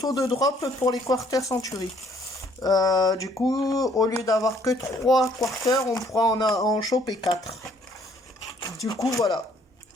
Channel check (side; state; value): both; normal; correlation 0.63